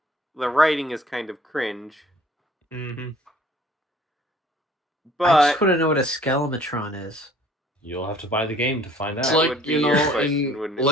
the writing is kind of cringe, Mm-hmm. I but just want to know what a skelematron is. You'll have to buy the game to find out. It's That like, would be you your know, question, wouldn't in it?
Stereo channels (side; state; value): both; normal; correlation 0.54